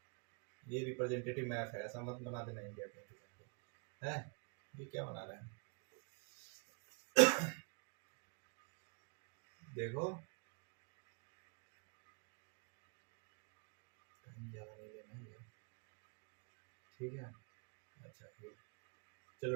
ये रिप्रेजेंटेटिव मैप है, ऐसा मत बना देना इंडिया के, है ये क्या बना रहे हैं? देखो, ठीक है, अच्छा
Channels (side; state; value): left; quieter; 34.4 dB